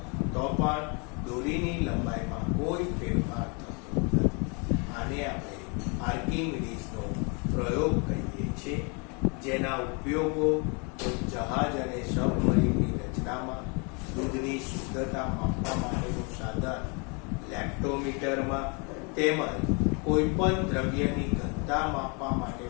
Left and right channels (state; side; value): quieter; right; 33.7 dB